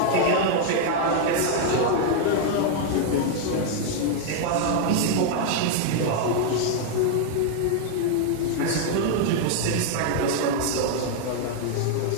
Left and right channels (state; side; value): different; both; correlation 0.00